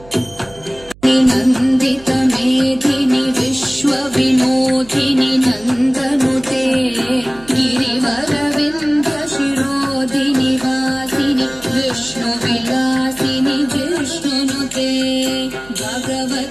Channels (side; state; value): right; noise; hum, 23 dB below the sound